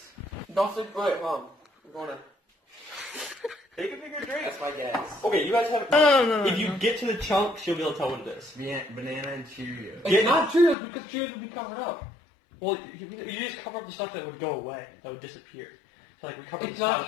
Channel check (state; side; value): drops out; right; at 10.8 s